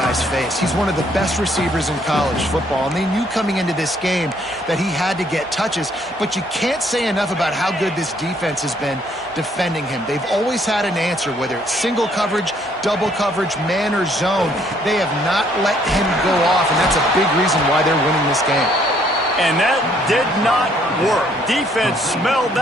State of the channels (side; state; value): both; normal; correlation 0.66